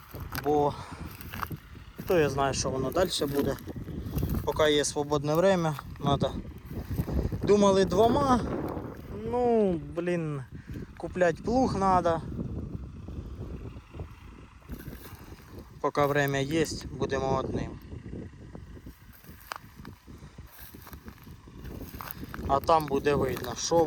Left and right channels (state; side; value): identical; both; correlation 1.00